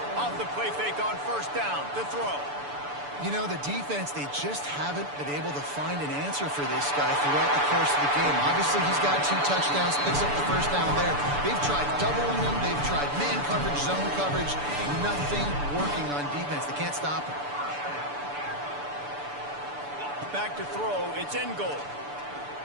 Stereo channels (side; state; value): left; late; 6.9 ms